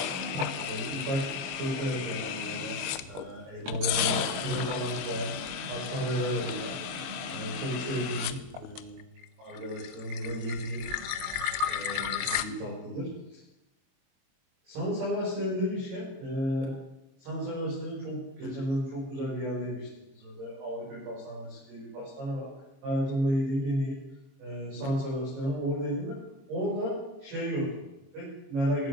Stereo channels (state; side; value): late; left; 22 ms